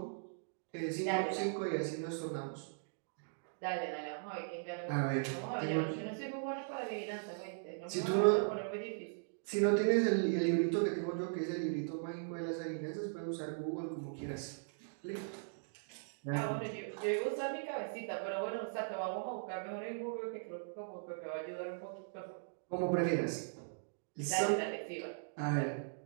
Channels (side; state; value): left; silent; digital silence